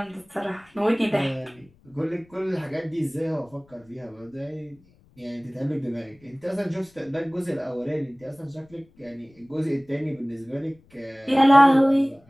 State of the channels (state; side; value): noise; left; rumble, 30 dB below the sound